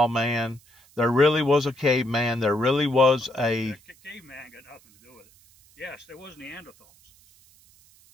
man. There really was a caveman. There really was a... The caveman got nothing to do with it. Yes, there was Neanderthals.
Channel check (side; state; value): right; noise; hiss, 28 dB below the sound